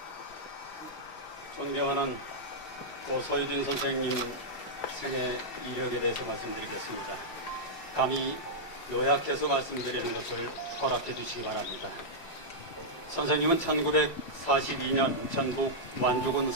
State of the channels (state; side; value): late; right; 5.3 ms